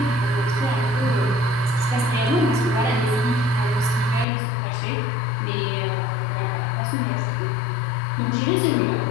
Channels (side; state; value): right; drops out; at 4.2 s